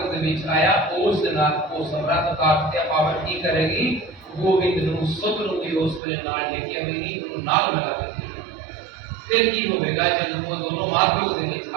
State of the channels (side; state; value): left; drops out; at 6.0 s